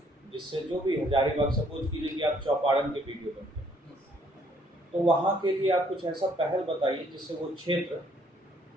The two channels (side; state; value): both; normal; correlation 0.65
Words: जिससे जो भी हजारीबाग, सपोज कीजिए कि आप चौपारण के वीडियो बनते हैं, तो वहाँ के लिए आप कुछ ऐसा पहल बताइए जिससे वो क्षेत्र